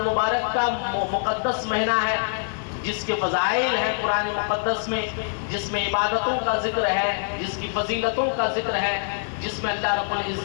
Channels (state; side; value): silent; right; 62 dB below the other